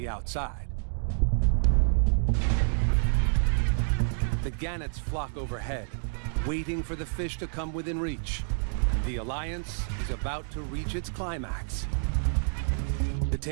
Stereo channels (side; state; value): left; silent; digital silence